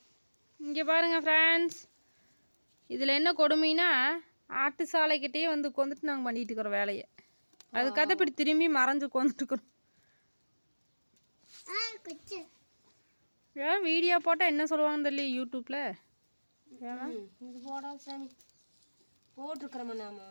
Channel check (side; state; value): both; inverted; correlation -1.00